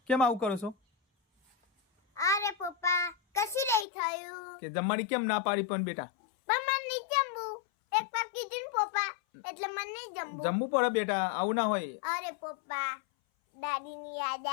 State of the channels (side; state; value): right; drops out; at 3.9 s